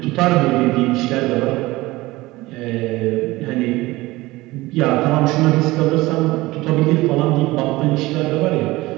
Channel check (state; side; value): quieter; left; 19.7 dB